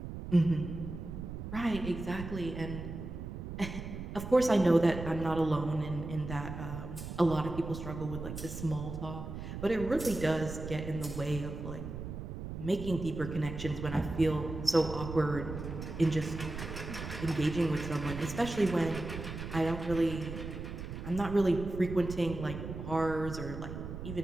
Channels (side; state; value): right; noise; rumble, 8 dB below the sound